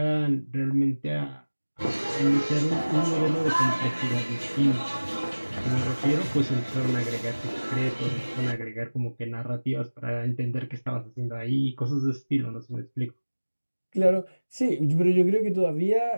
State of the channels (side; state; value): both; inverted; correlation -1.00